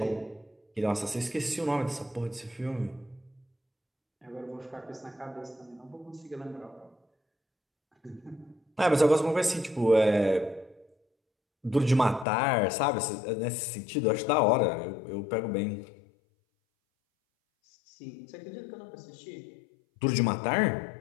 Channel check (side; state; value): right; drops out; at 12.2 s